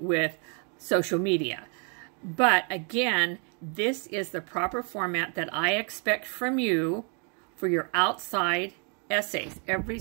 with social media. But again, this is the proper format that I expect from you for your outside essays. Every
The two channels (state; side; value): quieter; left; 38.1 dB